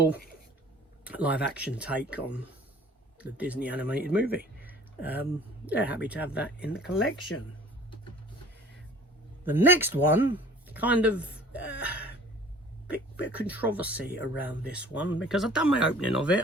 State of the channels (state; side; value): normal; both; correlation 0.49